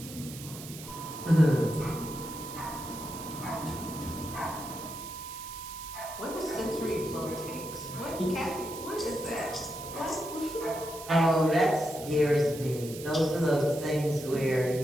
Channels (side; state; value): right; noise; hiss, 13 dB below the sound